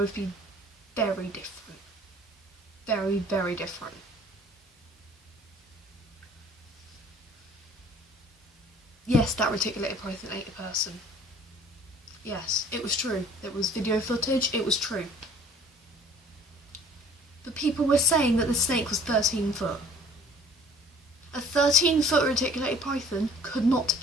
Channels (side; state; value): both; normal; correlation 0.52